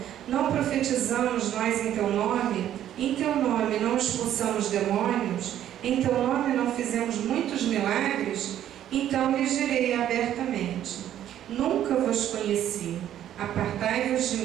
não profetizamos nós em teu nome? Em teu nome não expulsamos demônios? Em teu nome não fizemos muitos milagres? Então lhes direi abertamente, nunca vos conheci. Apartai-vos de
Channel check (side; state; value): left; quieter; 11.3 dB